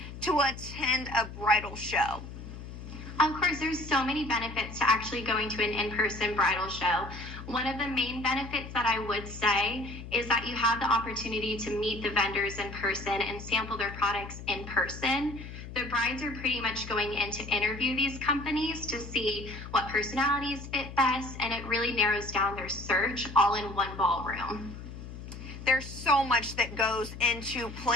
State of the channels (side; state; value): left; noise; hum, 11 dB below the sound